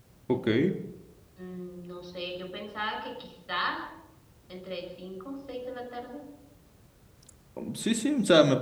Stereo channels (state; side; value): identical; both; correlation 1.00